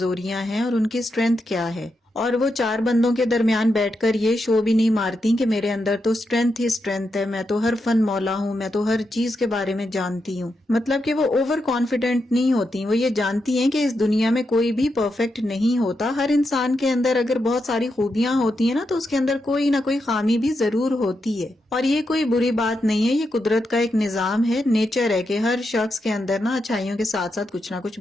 ہیں اور ان کی اسٹرینتھ کیا ہے. اور وہ چار بندوں کے درمیان بیٹھ کر یہ شو بھی نہیں مارتی کہ میرے اندر تو اسٹرینتھ ہی اسٹرینتھ ہے، میں تو ہر فن مولا ہوں، میں تو ہر چیز کے بارے میں جانتی ہوں. مطلب کہ وہ اوور کانفیڈنٹ نہیں ہوتی. وہ یہ جانتی ہیں کہ اس دنیا میں کوئی بھی پرفیکٹ نہیں ہوتا. ہر انسان کے اندر اگر بہت ساری خوبیاں ہوتی ہیں نا تو اس کے اندر کوئی نہ کوئی خامی بھی ضرور ہوتی ہے. اور یہ کوئی بری بات نہیں ہے، یہ قدرت کا ایک نظام ہے، نیچر ہے کہ ہر شخص کے اندر نا اچھائیوں کے ساتھ ساتھ کچھ نہ کچھ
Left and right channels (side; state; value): both; normal; correlation 0.85